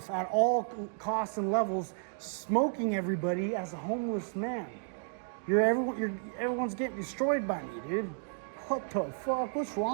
at all costs and levels, smoking everybody as a homeless man. Everyone's getting destroyed by me, dude. What the fuck? What's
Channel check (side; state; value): left; silent; digital silence